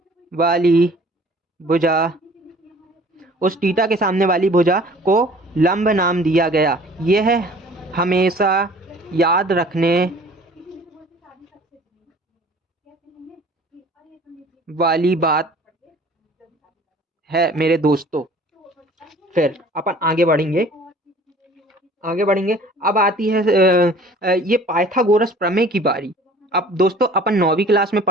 वाली भुजा उस टीटा के सामने वाली भुजा को लंब नाम दिया गया। यह हमेशा याद रखने वाली बात है मेरे दोस्तों। फिर अपन आगे बढ़ेंगे, अब आती है ये पाइथागोरस प्रमेय की बारी। अब दोस्तों अपन 9वीं क्लास में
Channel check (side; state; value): both; normal; correlation 0.50